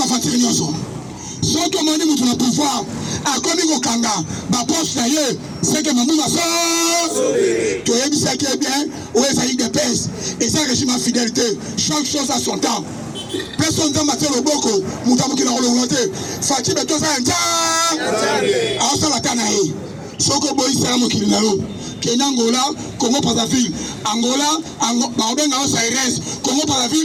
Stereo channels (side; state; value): both; identical; correlation 1.00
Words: faire une chose. Sans que mon niveau de pouvoir, à comme il Kanga, ma poche d'ailleurs, c'est que Mamou va faire. Tu as dit ça qui est bien, où est-ce qu'il y a des pèses. Et ça, régime à fidélité, chaque chose à son temps. Personne n'a maté le boko, Moutamou qui l'a reloué. Fatih, mais tout ça, un temps. Alors ça, la tanaï. Soko boy, c'est un mot qui l'a eu. Kenya Angola, Congo Brazzaville, Angola, Baobenga Aires, Congo